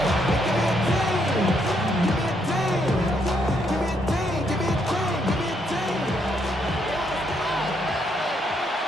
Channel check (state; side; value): normal; both; correlation 0.74